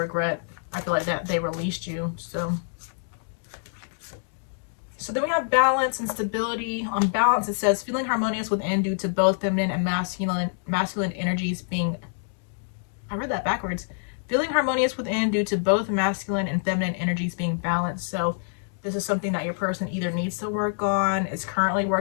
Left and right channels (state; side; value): silent; right; digital silence